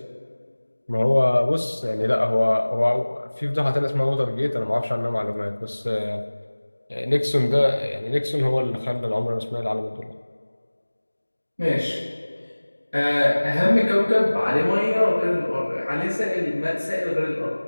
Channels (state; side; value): inverted; both; correlation -1.00